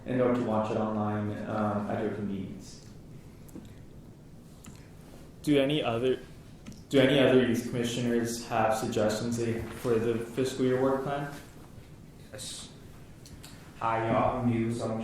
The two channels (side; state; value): both; identical; correlation 1.00